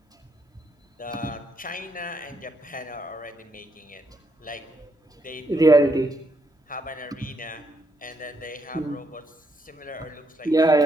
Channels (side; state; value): both; normal; correlation 0.76